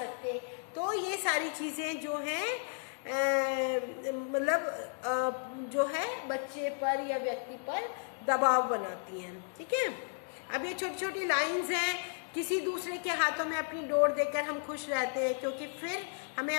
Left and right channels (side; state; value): right; silent; 55 dB below the other